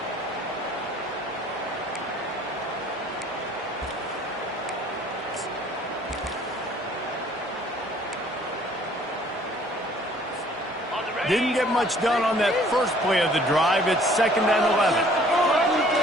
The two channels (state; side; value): normal; both; correlation 0.56